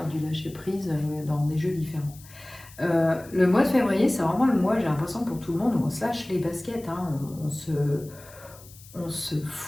du lâcher prise dans des jeux différents. Le mois de février, c'est vraiment le mois, j'ai l'impression pour tout le monde, où on se lâche les baskets, hein, on se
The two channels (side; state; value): left; noise; hiss, 21 dB below the sound